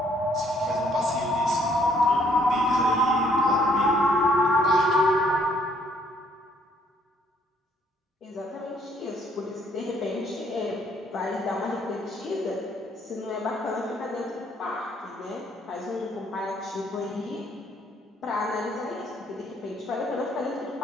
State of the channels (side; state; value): both; normal; correlation 0.65